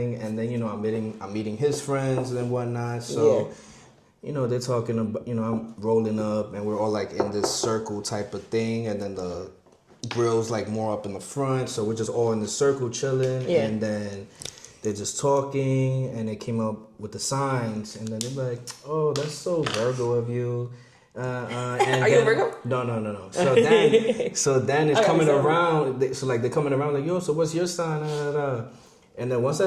and then I'm meeting his friends and whatnot. So, they're talking about, I'm rolling up, and we're all like in this circle type of thing, and then the grill's like more up in the front, so we're just all in the circle chilling, and then they're just talking, and they came up with the signs, and then they're like, "Oh, that's so Virgo of you." And Are you a Virgo? No. So then it's coming around. So like they're coming around like, "Yo, so what's your sign?" And then once I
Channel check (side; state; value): both; identical; correlation 1.00